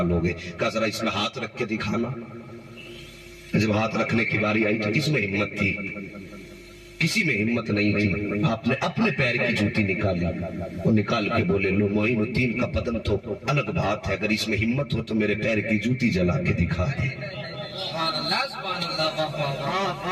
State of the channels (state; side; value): identical; both; correlation 1.00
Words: ہو گئے۔ کہا ذرا اس میں ہاتھ رکھ کے دکھانا۔ جب ہاتھ رکھنے کی باری آئی تو کس میں ہمت تھی؟ کسی میں ہمت نہیں تھی۔ آپ نے اپنے پیر کی جوتی نکالی، وہ نکال کے بولے لو معین الدین کا بدن تو الگ بات ہے، اگر اس میں ہمت ہو تو میرے پیر کی جوتی جلا کے دکھا دے،